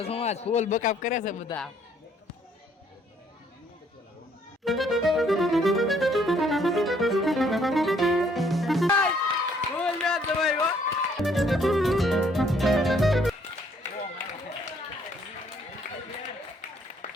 સમાજ ફૂલ બકાપ કરે છે બધા.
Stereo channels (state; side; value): normal; both; correlation 0.65